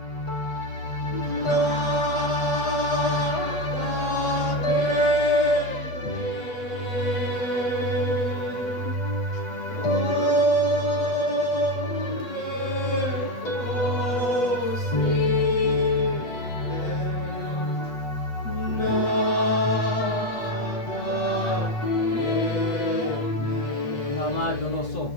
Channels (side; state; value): right; late; 8.2 ms